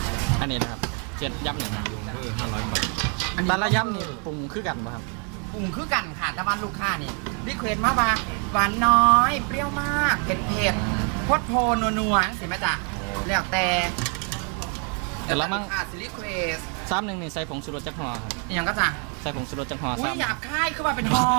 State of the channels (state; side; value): quieter; left; 38.7 dB